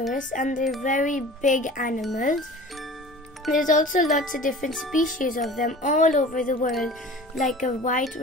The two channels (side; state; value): both; normal; correlation 0.41